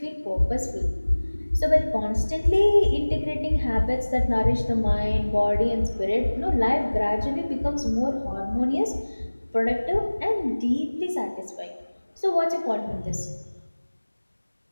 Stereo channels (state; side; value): inverted; both; correlation -1.00